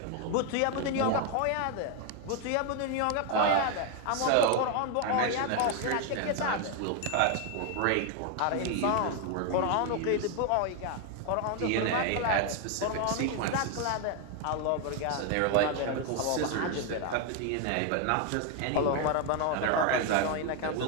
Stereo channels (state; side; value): different; both; correlation 0.01